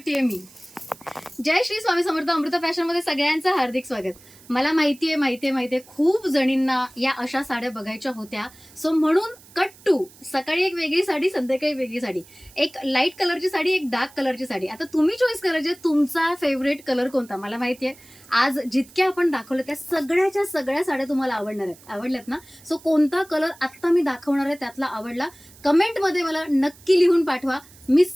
मी? जय श्री स्वामी समर्थ. अमृता फॅशन मध्ये सगळ्यांचं हार्दिक स्वागत. मला माहितीये खूप जणींना या अशा साड्या बघायच्या होत्या. सो म्हणून कट टू सकाळी एक वेगळी साडी, संध्याकाळी वेगळी साडी, एक लाईट कलरची साडी, एक डार्क कलरची साडी. आता तुम्ही चॉईस करायचे तुमचा फेवरेट कलर कोणता. मला माहितीये आज जितक्या आपण दाखवलं त्या सगळ्याच्या सगळ्या साड्या तुम्हाला आवडणार आहेत. आवडल्यात ना? सो कोणता कलर आत्ता मी दाखवणार आहे त्यातला आवडला कमेंटमध्ये मला नक्की लिहून पाठवा. मी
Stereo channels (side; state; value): right; noise; hiss, 24 dB below the sound